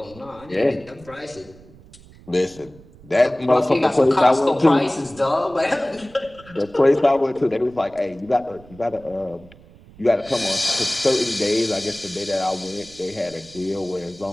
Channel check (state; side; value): noise; right; rumble, 23 dB below the sound